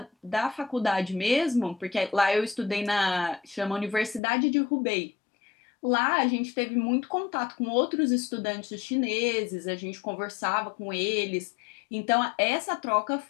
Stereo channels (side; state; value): right; drops out; at 4.2 s